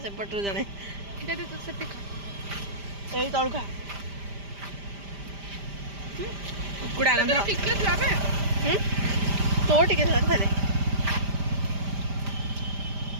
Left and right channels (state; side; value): late; left; 5.0 ms